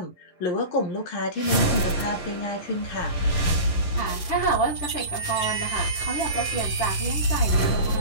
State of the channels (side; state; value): right; late; 11 ms